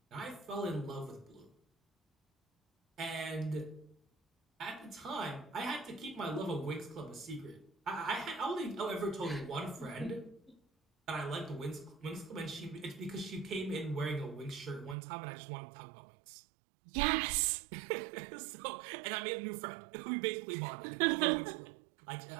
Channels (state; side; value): drops out; left; at 15.0 s